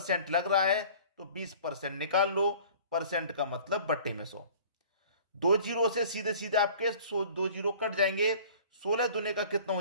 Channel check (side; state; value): both; inverted; correlation -0.47